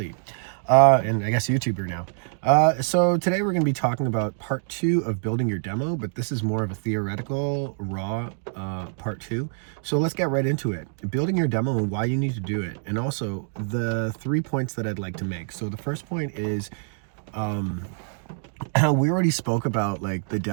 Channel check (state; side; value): silent; left; digital silence